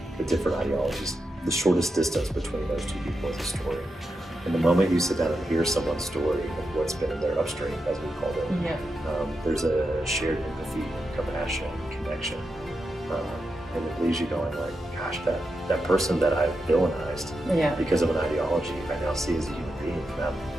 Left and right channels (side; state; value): both; normal; correlation 0.87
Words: with different ideologies, the shortest distance between those two people is a story. And the moment you sit down and hear someone's story and what's been in their upstream, as we called it, there's a shared empathy, compassion, connection. And it leaves you going like, gosh, that person that I villainized because of an ideology, I now see as a human being.